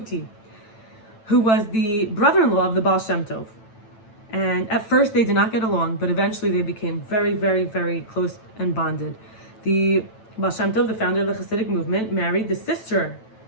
who was the brother-in-law of the Baal Shem Tov. And at first they did not get along, but eventually they became very, very, very close and bonded. The Baal Shem Tov, the founder of the Hasidic movement, married the sister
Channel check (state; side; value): late; right; 9.0 ms